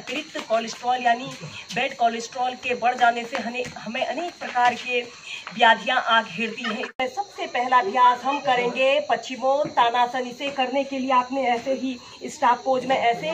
कोलेस्ट्रॉल यानी बैड कोलेस्ट्रॉल के बढ़ जाने से हमें अनेक प्रकार के व्याधियां आ घेरती हैं। सबसे पहला अभ्यास हम करेंगे पश्चिमोत्तानासन। इसे करने के लिए आपने ऐसे ही स्टाफ पोज में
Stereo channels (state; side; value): identical; both; correlation 1.00